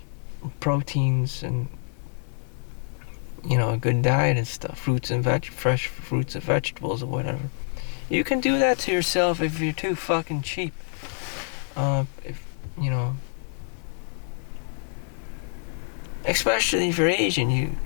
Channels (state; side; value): silent; right; 61 dB below the other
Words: proteins and, a good diet and stuff, fresh fruits and vegetables or whatever. You can do that to yourself if you're too fucking cheap. Especially if you're Asian, you